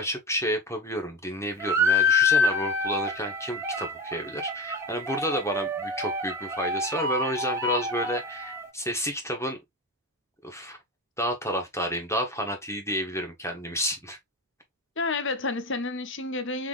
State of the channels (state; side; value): normal; both; correlation 0.24